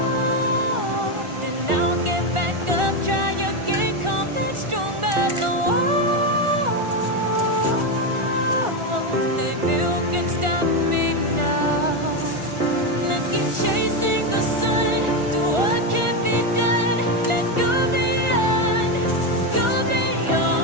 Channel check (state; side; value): late; left; 1.4 ms